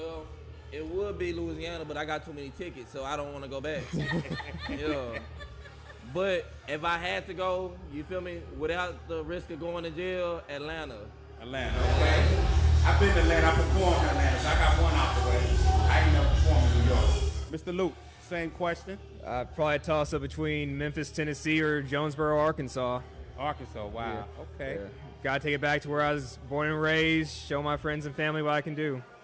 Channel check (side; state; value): both; identical; correlation 1.00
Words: it would be Louisiana, but I got too many tickets, so I don't want to go back. Yeah. But if I had to go, you feel me, without the risk of going to jail, Atlanta. Atlanta, okay. I've been to Atlanta. I performed in Atlanta, so I got one out the way. I ain't never performed in New York. Mr. Luke, same question. I'd probably toss up between Memphis, Tennessee, or Jonesboro, Arkansas. Arkansas, wow. Yeah. Okay. Yeah. Gotta take it back to where I was born and raised, show my friends and family what I can do.